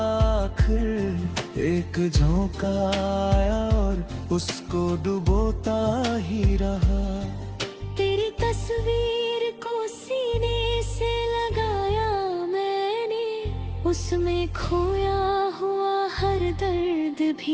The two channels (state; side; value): identical; both; correlation 1.00